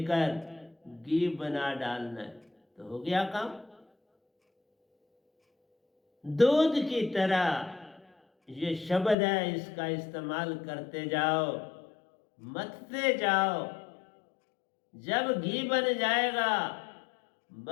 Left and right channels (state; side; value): drops out; right; at 9.2 s